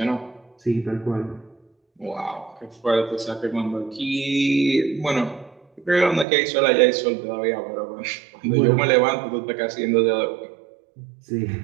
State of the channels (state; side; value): drops out; left; at 6.2 s